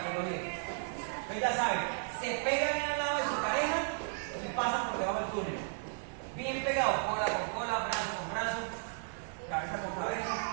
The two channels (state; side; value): silent; left; digital silence